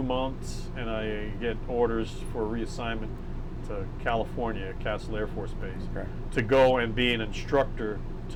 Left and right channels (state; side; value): identical; both; correlation 1.00